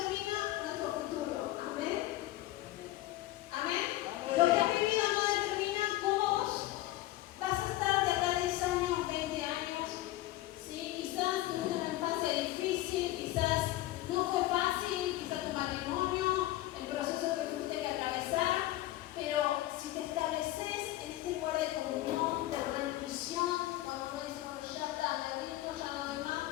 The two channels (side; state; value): right; quieter; 16.2 dB